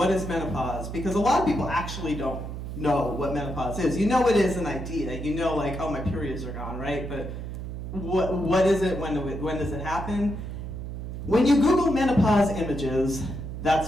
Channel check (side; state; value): right; noise; hum, 7 dB below the sound